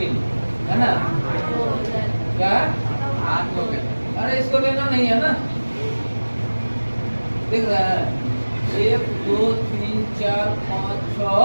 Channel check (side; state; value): both; inverted; correlation -1.00